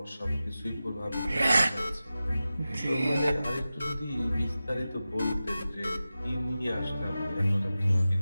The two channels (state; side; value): inverted; both; correlation -0.94